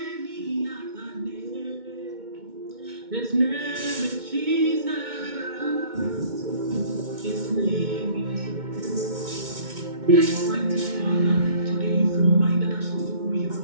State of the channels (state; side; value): late; left; 2.2 ms